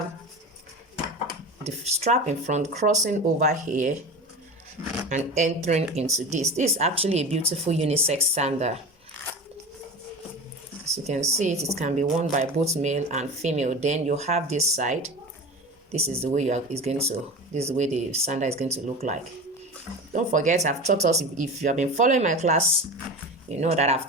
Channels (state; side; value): normal; both; correlation 0.30